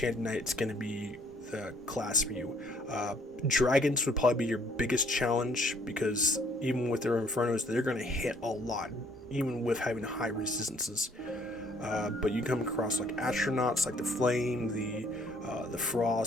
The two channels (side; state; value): both; normal; correlation 0.62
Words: Knight's going to be the class for you. Dragons would probably be your biggest challenge, because even with their Infernos, they're going to hit a lot, even with having high resistances. But you come across like astronauts, like the flame, the